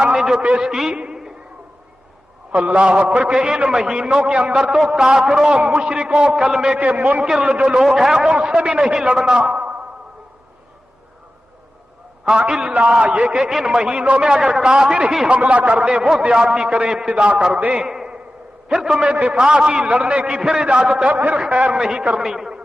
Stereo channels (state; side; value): normal; both; correlation 0.94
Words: نے جو پیش کی، اللہ اکبر، کہ ان مہینوں کے اندر تو کافروں، مشرکوں، کلمے کے منکر جو لوگ ہیں ان سے بھی نہیں لڑنا. ہاں الا یہ کہ ان مہینوں میں اگر کافر ہی حملہ کر دیں، وہ زیادتی کریں، ابتدا کر دیں، پھر تمہیں دفاع کی، لڑنے کی پھر اجازت ہے، پھر خیر نہیں کرنی.